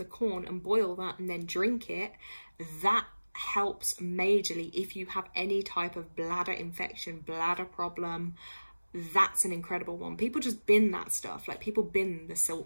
corn and boil that and then drink it, that helps majorly if you have any type of bladder infection, bladder problem. That's an incredible one. People just bin that stuff. Like, people bin the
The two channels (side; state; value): both; inverted; correlation -1.00